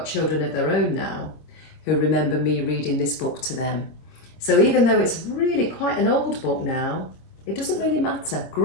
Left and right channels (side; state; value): right; late; 26 ms